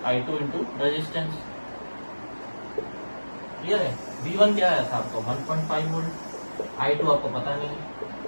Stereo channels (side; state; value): both; inverted; correlation -1.00